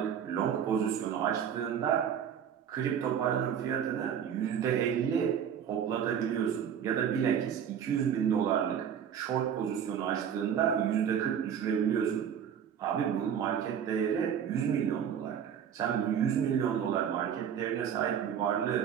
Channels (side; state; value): left; quieter; 8.5 dB